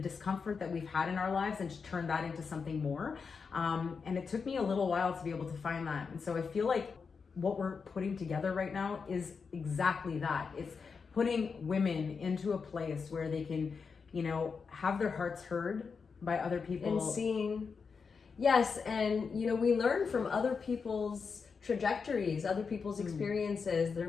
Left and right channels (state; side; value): quieter; right; 5.4 dB